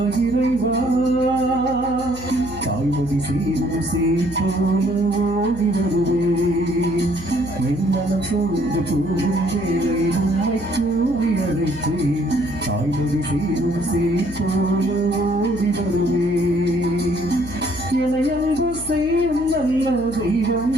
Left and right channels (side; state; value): left; noise; hum, 14 dB below the sound